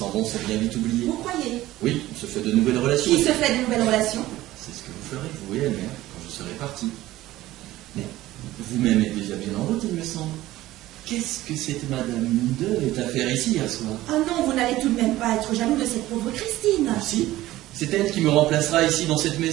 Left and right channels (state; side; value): quieter; left; 16.1 dB